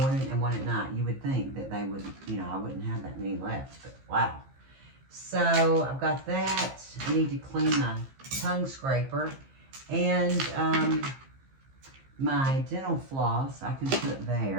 and one at night. You would think that they would, you know, I wouldn't have that many left, but wow. So I've got that. I need to clean my tongue scraper. And my dental floss I can put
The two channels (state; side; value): late; left; 15 ms